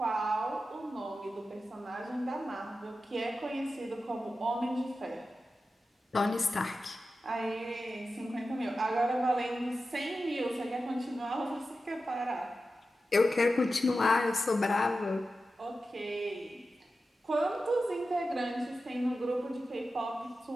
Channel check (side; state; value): both; normal; correlation 0.92